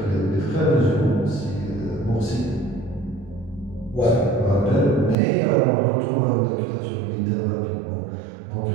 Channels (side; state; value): left; drops out; at 5.2 s